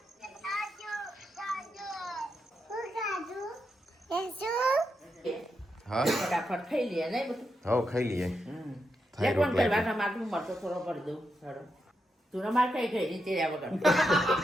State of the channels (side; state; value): both; normal; correlation 0.84